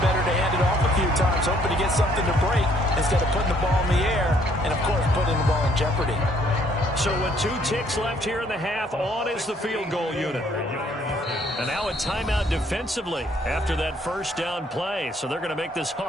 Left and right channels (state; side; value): normal; both; correlation 0.65